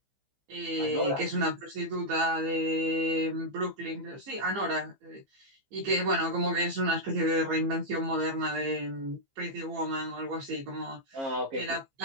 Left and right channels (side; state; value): left; late; 15 ms